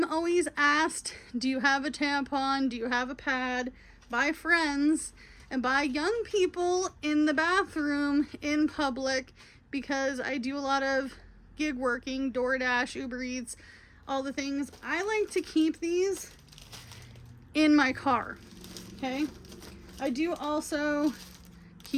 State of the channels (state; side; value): identical; both; correlation 1.00